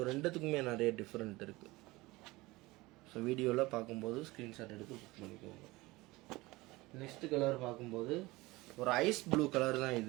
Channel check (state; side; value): quieter; left; 21.0 dB